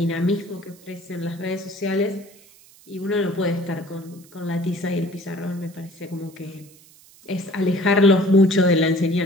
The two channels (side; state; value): right; noise; hiss, 25 dB below the sound